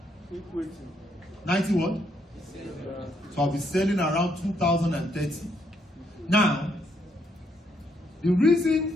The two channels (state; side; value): normal; both; correlation 0.74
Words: 90 what? So I'll be selling around 2030. Now, the